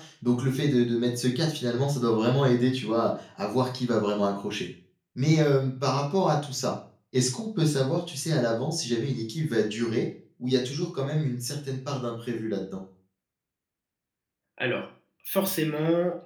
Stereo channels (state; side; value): identical; both; correlation 1.00